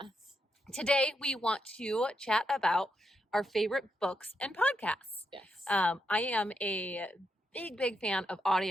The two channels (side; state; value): both; normal; correlation 0.82